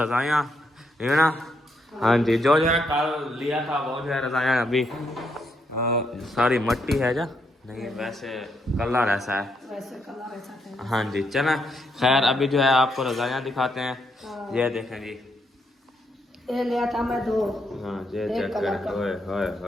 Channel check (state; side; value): normal; both; correlation 0.77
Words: है ना। हाँ जी, जो है कल लिया था वो जो है रज़ायाँ अभी सारी मट्टी है जा नहीं, वैसे कलर ऐसा है, वैसे कलर ऐसा है। हाँ जी चलें। खैर अभी जो है आपको रज़ायाँ दिखाते हैं। ये देखें जी, ये लिया था मैं 2। हाँ ये एक चेक कलर करें, का। होए होए